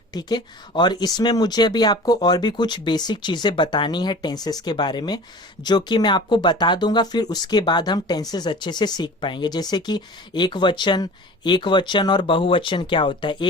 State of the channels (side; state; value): both; normal; correlation 0.40